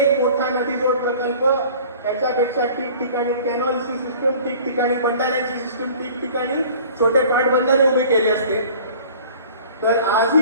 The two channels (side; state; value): both; inverted; correlation -0.47